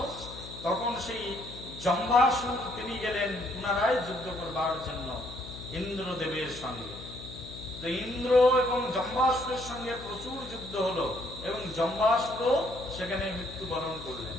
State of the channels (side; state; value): left; noise; hum, 14 dB below the sound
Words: তখন সেই জম্বাসুর তিনি গেলেন পুনরায় যুদ্ধ করবার জন্য ইন্দ্রদেবের সঙ্গে। তো ইন্দ্র এবং জম্বাসুরের সঙ্গে প্রচুর যুদ্ধ হলো এবং জম্বাসুরও সেখানে মৃত্যুবরণ করলেন।